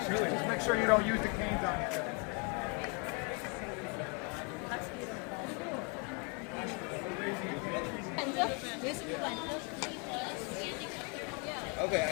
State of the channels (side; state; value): right; quieter; 34.7 dB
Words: Just make sure you don't use the canes on each other. 앉아. 예수님도 앉아. Okay,